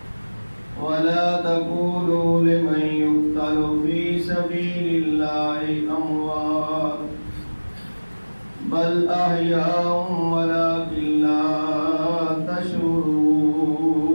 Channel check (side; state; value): both; inverted; correlation -1.00